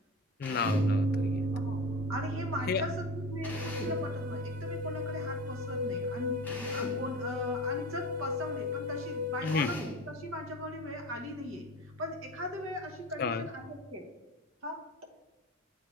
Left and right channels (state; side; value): normal; both; correlation 0.31